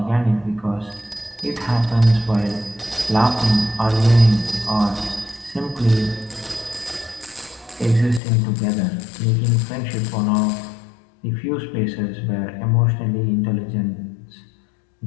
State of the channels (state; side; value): drops out; right; at 8.2 s